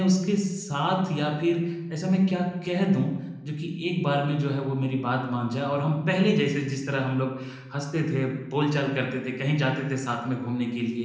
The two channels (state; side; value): identical; both; correlation 1.00